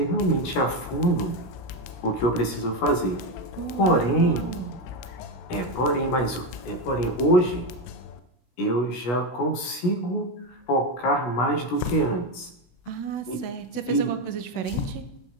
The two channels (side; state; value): right; late; 17 ms